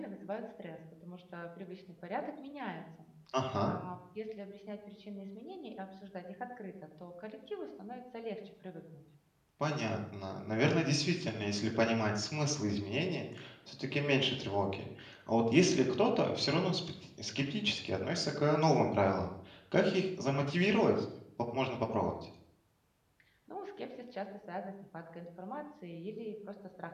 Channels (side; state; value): both; identical; correlation 1.00